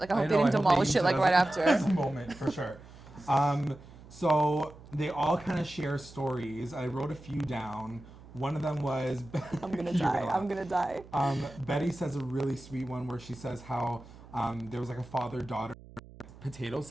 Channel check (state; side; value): noise; right; hum, 19 dB below the sound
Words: Like, I hope they didn't demolish it like right after. As a moment, for sure. So they all kind of share stories. I wrote a few down. One of them was... I'm gonna die. I'm gonna die. Betty says a really sweet one where she says how there was like a father-daughter potato